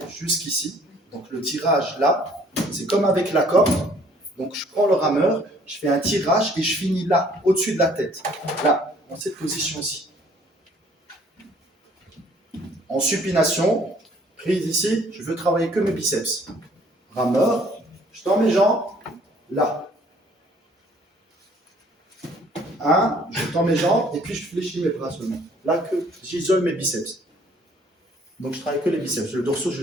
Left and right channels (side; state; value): both; normal; correlation 0.58